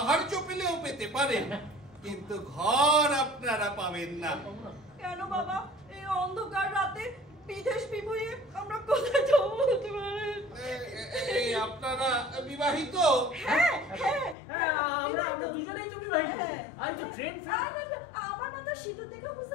পেলেও পেতে পারেন, কিন্তু ঘর আপনারা পাবেন না। কেন বাবা, এই অন্ধকার রাতে বিদেশ বিভুঁইয়ে আমরা কোথায় যাবো বলতে পারেন? এই আপনারা বিবাহিত? হ্যাঁ হ্যাঁ হ্যাঁ, আমরা দুজনেই তো বিবাহিত। আর তো ট্রেন আমার মাথা সিঁদুর দেখে বুঝতে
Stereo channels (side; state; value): right; drops out; at 14.4 s